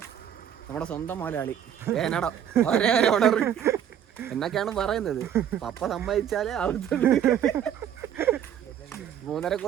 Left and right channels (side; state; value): left; quieter; 9.6 dB